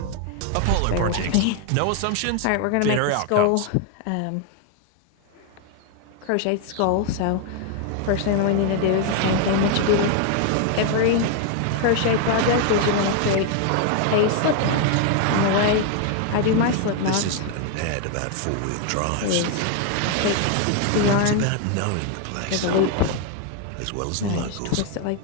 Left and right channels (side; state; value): both; different; correlation 0.01